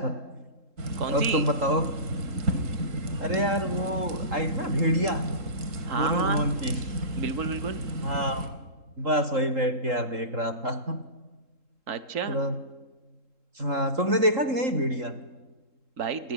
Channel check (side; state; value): left; late; 3.7 ms